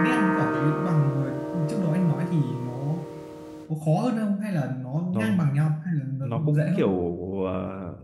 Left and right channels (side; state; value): both; identical; correlation 1.00